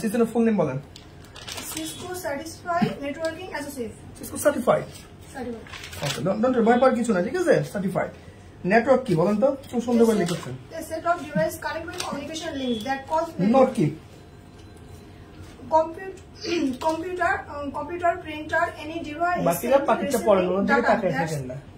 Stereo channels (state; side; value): identical; both; correlation 1.00